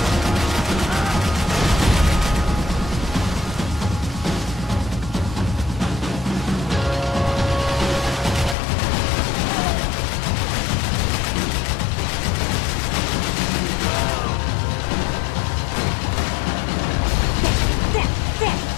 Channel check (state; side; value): drops out; right; at 8.6 s